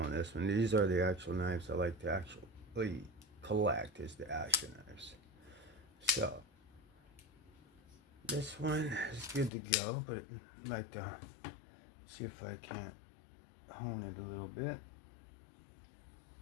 this one. These are the actual knives I like to actually collect, is the Asher knives. So this one is good to go, but I'd like to see if I can't hone it a little bit.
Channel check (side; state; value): right; drops out; at 9.5 s